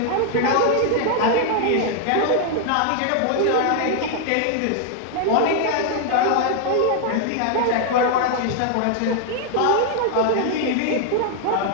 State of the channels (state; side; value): different; both; correlation 0.00